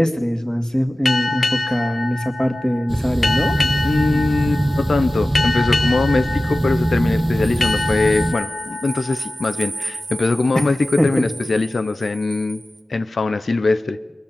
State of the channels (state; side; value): normal; both; correlation 0.96